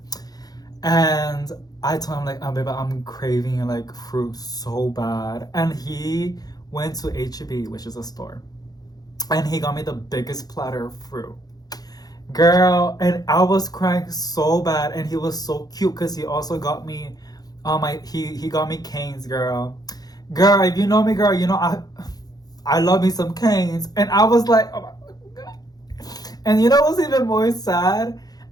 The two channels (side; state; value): right; late; 0.19 ms